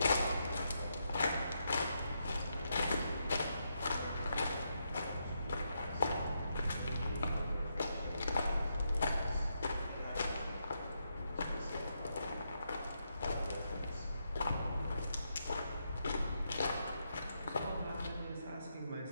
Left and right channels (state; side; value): inverted; both; correlation -0.81